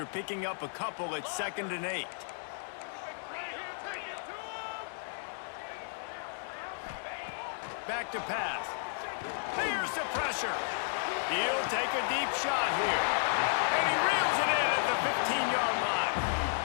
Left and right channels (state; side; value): silent; right; digital silence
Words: picking up a couple at 2nd and 8. Back to pass. Here's the pressure. He'll take a deep shot here. And he reels it in at the 15-yard line.